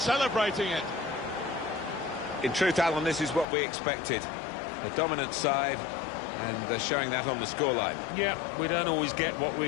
it. In truth, Alan, this is what we expected. The dominant side, and they're showing that on the scoreline. Yeah, we don't always get what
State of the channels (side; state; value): right; drops out; at 3.5 s